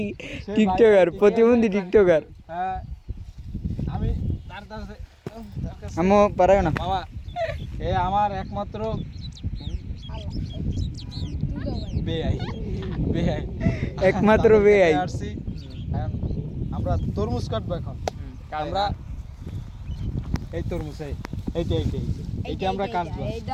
টিকটকার প্রতিবন্ধী টিকটকার। হ্যাঁ, আমি তার কাছে আমো পারাও না বাবা, এ আমার একমাত্র একমাত্র বেআই। আমরা তরমুজ কাটবো এখন। আমরা এই তরমুজ এইটা আমরা কাটবো।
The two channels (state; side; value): identical; both; correlation 1.00